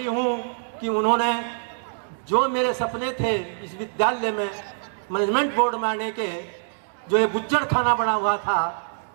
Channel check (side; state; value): left; silent; digital silence